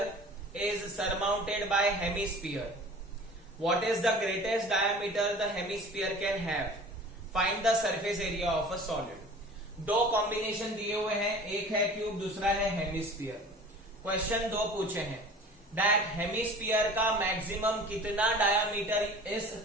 is surmounted bye hemisphere. What is the greatest diameter the hemisphere can have? Find the surface area of a solid. दो combination दिए हुए हैं, एक है cube, दूसरा है hemisphere. Question 2 पूछे हैं दैट हेमिस्फीयर का मैक्सिमम कितना डायामीटर इस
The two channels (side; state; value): both; normal; correlation 0.43